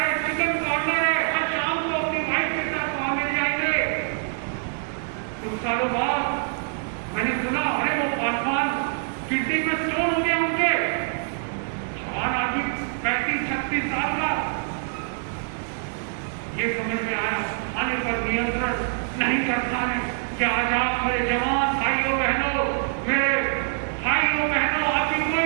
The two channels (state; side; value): silent; left; digital silence